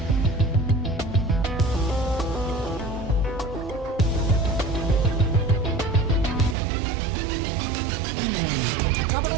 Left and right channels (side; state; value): left; drops out; at 6.6 s